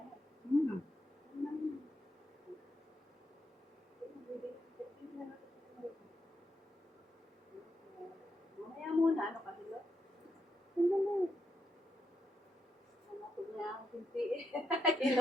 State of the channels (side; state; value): both; normal; correlation 0.81